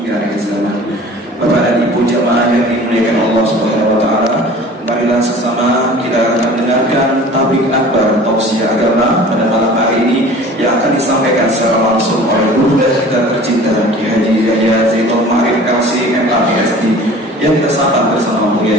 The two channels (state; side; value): normal; both; correlation 0.44